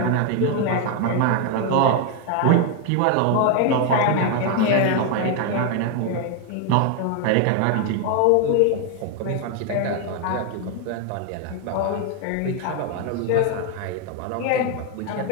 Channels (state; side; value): different; both; correlation 0.01